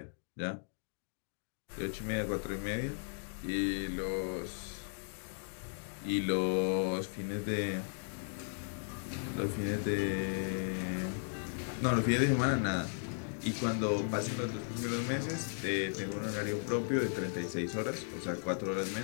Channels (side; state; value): right; silent; digital silence